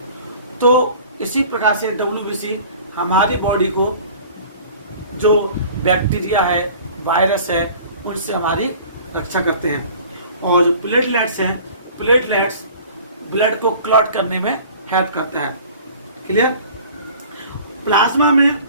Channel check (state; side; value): inverted; both; correlation -0.46